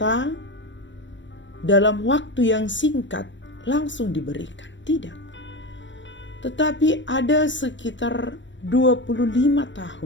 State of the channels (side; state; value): right; late; 0.54 ms